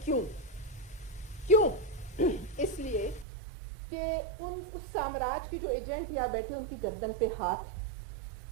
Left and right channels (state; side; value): drops out; left; at 3.2 s